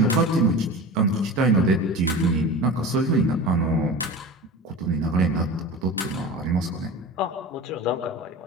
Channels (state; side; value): normal; both; correlation 0.33